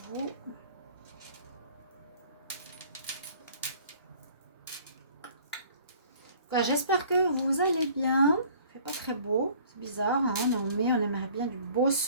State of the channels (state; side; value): inverted; both; correlation -0.53